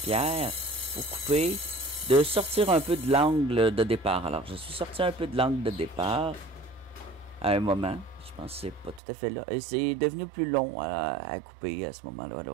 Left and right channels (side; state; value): left; drops out; at 9.0 s